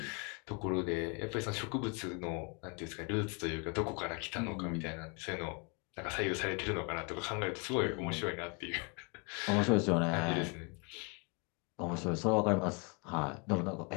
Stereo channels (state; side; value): quieter; right; 33.1 dB